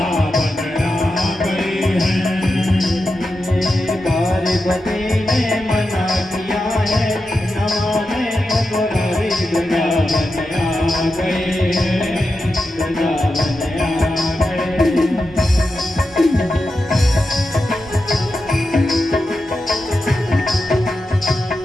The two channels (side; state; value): both; normal; correlation 0.89